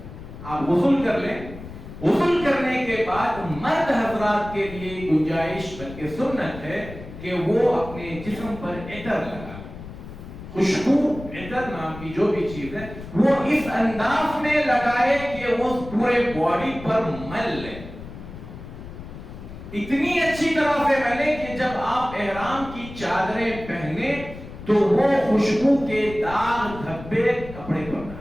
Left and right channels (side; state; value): left; noise; rumble, 13 dB below the sound